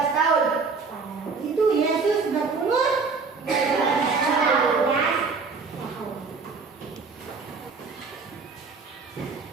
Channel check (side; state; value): left; quieter; 4.7 dB